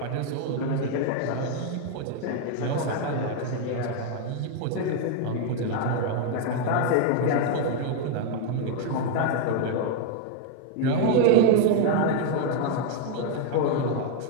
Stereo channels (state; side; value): different; both; correlation 0.00